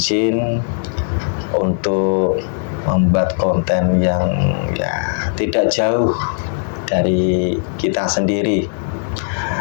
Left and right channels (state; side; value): silent; right; 66 dB below the other